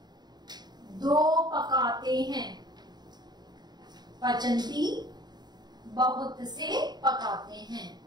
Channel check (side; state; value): left; late; 0.20 ms